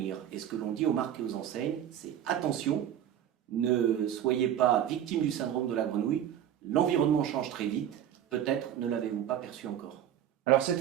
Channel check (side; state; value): left; quieter; 10.4 dB